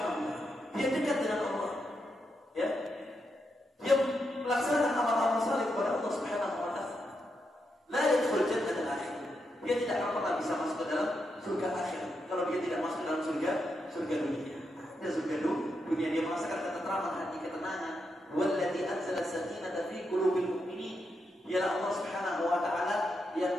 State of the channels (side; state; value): both; normal; correlation 0.83